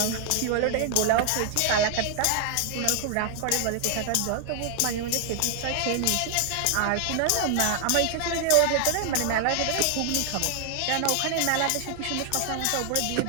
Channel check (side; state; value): both; different; correlation 0.00